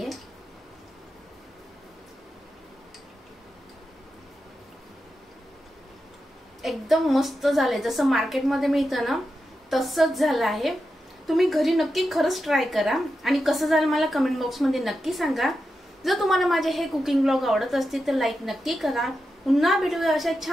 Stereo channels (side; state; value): both; normal; correlation 0.89